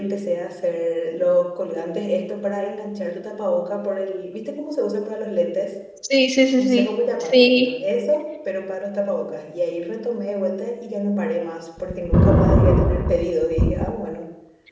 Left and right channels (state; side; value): identical; both; correlation 1.00